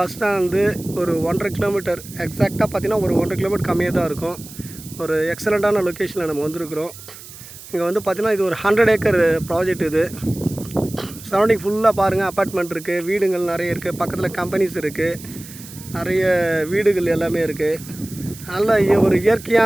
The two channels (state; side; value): noise; right; hiss, 16 dB below the sound